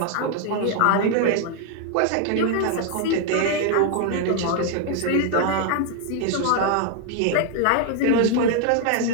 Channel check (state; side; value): different; both; correlation 0.00